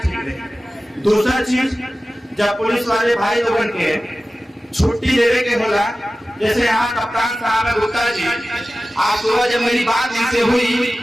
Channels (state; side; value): normal; both; correlation 0.96